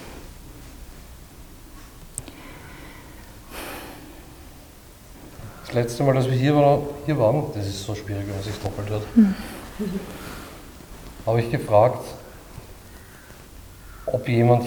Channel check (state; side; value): identical; both; correlation 1.00